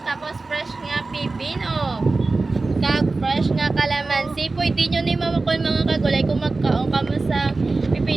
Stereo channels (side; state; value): left; quieter; 3.6 dB